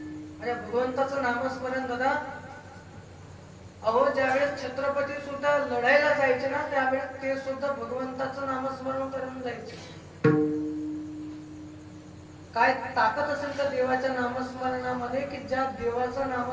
माझ्या भगवंताचं नामस्मरण दादा, अहो ज्यावेळेस छत्रपती सुद्धा लढायला जायचे ना, त्यावेळेस ते सुद्धा भगवंताचं नामस्मरण करून जायचे. काय ताकद असेल तर देवाच्या नामस्मरणामध्ये, की ज्या देवाचं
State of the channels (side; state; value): both; identical; correlation 1.00